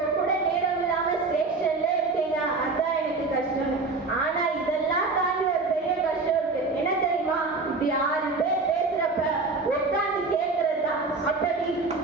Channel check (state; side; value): quieter; left; 3.8 dB